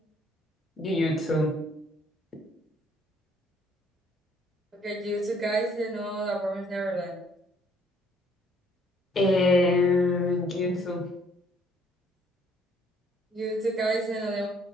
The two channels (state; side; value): normal; both; correlation 0.63